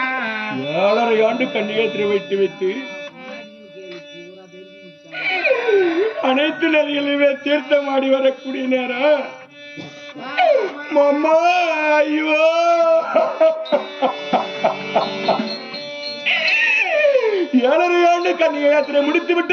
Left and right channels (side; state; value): both; identical; correlation 1.00